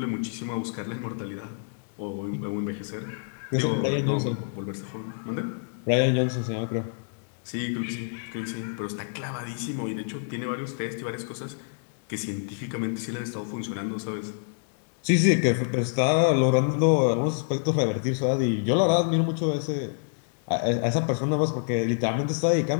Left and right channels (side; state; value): right; silent; digital silence